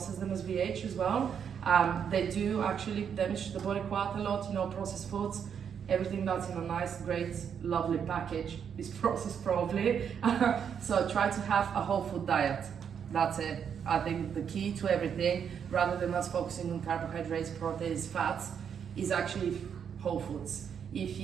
them as we age as well. They do actually damage the body quite a lot, processed foods. Everything that's in a nice, great, lovely package is processed probably. So try to have a whole food diet. That's it. I think the key to everything, rather than us focusing on carbohydrates, proteins, fats, is actually whole foods. If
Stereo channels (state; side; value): quieter; left; 7.7 dB